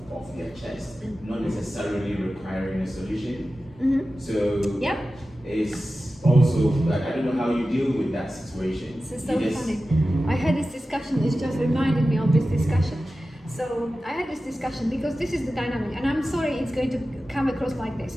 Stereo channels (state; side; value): normal; both; correlation 0.94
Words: off their chest, not necessarily requiring a solution. Mm-hmm. So Yep. it's also like I don't know how you deal with that situation. This is so You just- funny. I had this discussion, it just reminded me of this discussion. So I had this discussion because this is the dynamic, and I'm sorry it's going to come across like this,